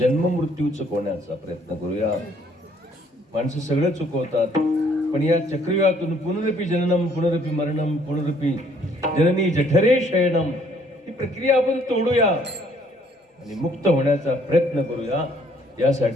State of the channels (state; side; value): normal; both; correlation 0.63